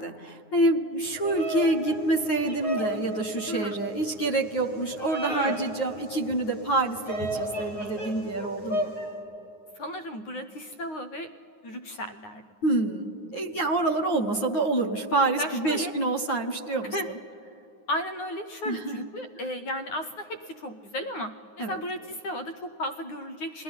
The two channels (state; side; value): late; right; 9.6 ms